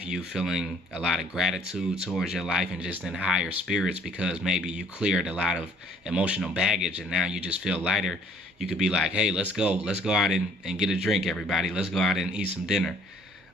you feeling a lot of gratitude towards your life and just in higher spirits because maybe you cleared a lot of emotional baggage and now you just feel lighter. You could be like, hey, let's go out and get a drink, everybody. Let's go out and eat some dinner.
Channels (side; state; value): both; normal; correlation 0.59